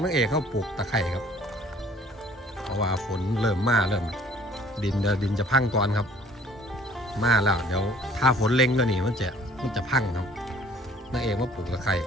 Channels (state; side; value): normal; both; correlation 0.55